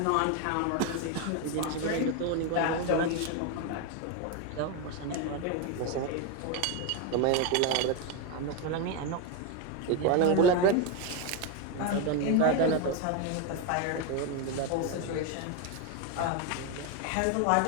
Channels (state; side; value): different; both; correlation 0.02